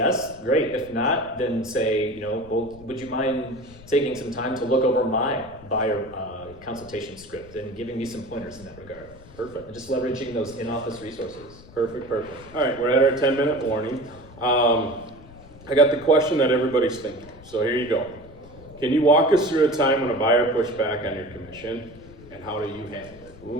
great. If not, then say, well, would you mind taking some time to look over my buyer consultation script and giving me some pointers in that regard? Perfect. And just leveraging those in-office resources. Perfect. All right, we're at our 10-minute warning. I got the question that everybody's thinking, so here you go. Can you walk us through a time when a buyer pushed back on your commission, and how do you handle it?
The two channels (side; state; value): left; noise; rumble, 20 dB below the sound